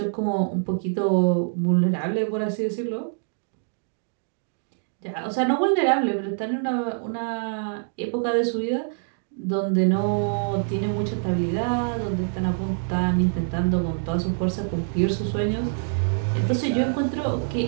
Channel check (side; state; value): left; silent; digital silence